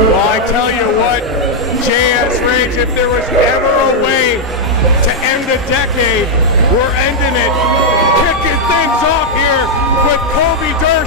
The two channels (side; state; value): both; normal; correlation -0.02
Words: I tell you what, JS Rage, if there was ever a way to end a decade, we're ending it. Kicking things off here with